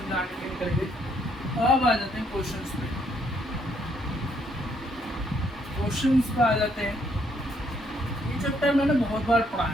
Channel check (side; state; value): both; normal; correlation 0.71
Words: के लिए करेंगे। अब आ जाते हैं क्वेश्चंस पे। क्वेश्चंस पे आ जाते हैं। ये चैप्टर मैंने बहुत बार पढ़ा